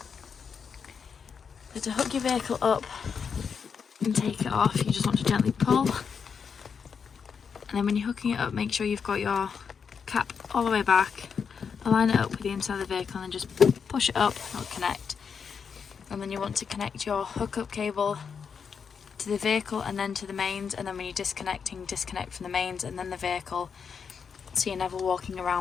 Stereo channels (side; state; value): right; quieter; 6.3 dB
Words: So to hook your vehicle up and take it off, you just want to gently pull, and then when you're hooking it up, make sure you've got your cap all the way back, align it up with the inside of the vehicle, and then just push it up and it'll connect. And then you want to connect your hookup cable to the vehicle and then to the mains, and then when you're disconnecting, disconnect from the mains and then the vehicle, so you're never walking